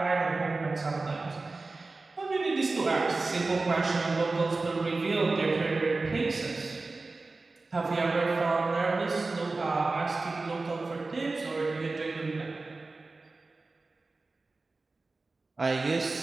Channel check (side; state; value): left; quieter; 3.5 dB